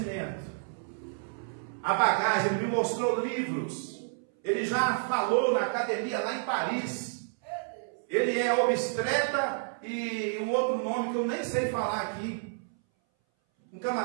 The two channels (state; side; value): silent; left; 58 dB below the other